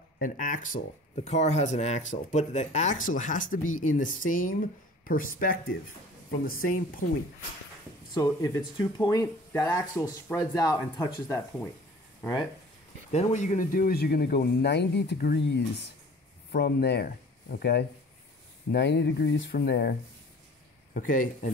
an axle. The car has an axle, but the axle has to be in the same perspective from the same point. So if it's 2 point, that axle spreads out and touches that point. All right? Then what you're going to do is you're going to go 90 degrees from there, okay? 90 degrees from there, okay?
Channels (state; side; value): normal; both; correlation 0.47